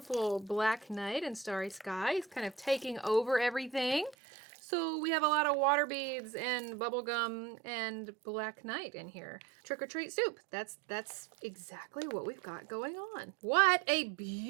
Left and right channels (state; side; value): drops out; left; at 4.2 s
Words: black night and starry sky is kind of taking over everything. So we have a lot of water beads and bubblegum and black night in here. Trick or treat soup. That's exactly what we've got going on. What a